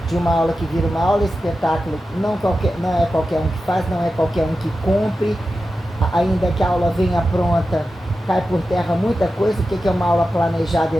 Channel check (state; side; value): normal; both; correlation 0.92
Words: de uma aula que vira uma aula espetáculo, não é qualquer um que faz, não é qualquer um que cumpre, ainda que a aula venha pronta, cai por terra muita coisa, o que é uma aula planejada